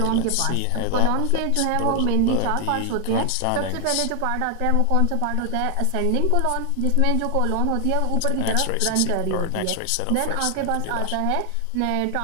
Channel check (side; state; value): both; different; correlation 0.00